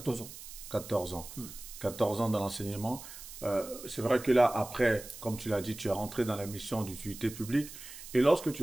ans. 14 ans. 14 ans dans l'enseignement. C'est vrai que là, après, comme tu l'as dit, tu es rentré dans la mission d'utilité publique. Et lorsque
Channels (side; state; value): right; noise; hiss, 13 dB below the sound